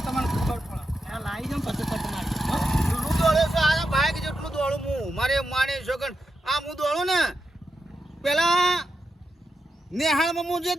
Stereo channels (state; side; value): normal; both; correlation 0.86